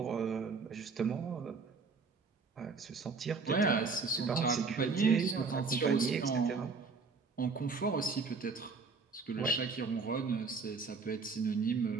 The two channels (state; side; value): quieter; left; 4.6 dB